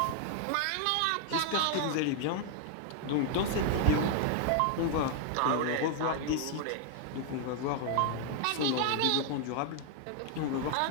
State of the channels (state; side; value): different; both; correlation 0.00